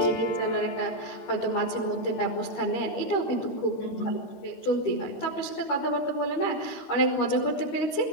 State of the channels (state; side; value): late; right; 13 ms